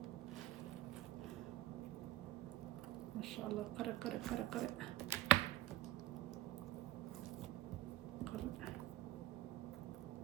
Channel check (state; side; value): quieter; left; 14.0 dB